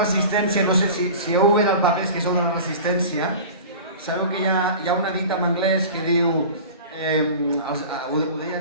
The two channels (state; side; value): inverted; both; correlation -0.37